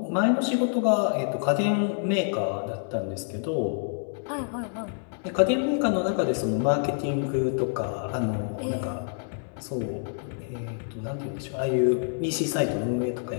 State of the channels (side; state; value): right; silent; 60 dB below the other